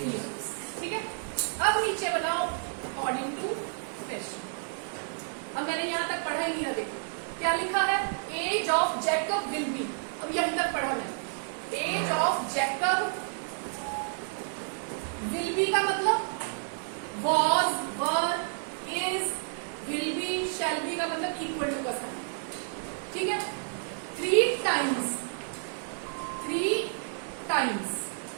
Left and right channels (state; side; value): silent; left; digital silence